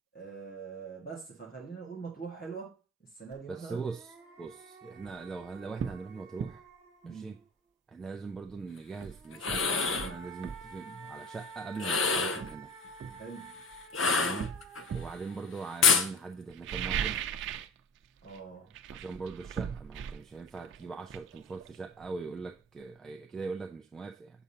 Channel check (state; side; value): normal; both; correlation 0.39